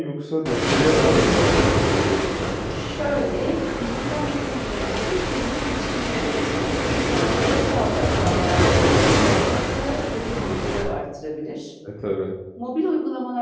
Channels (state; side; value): identical; both; correlation 1.00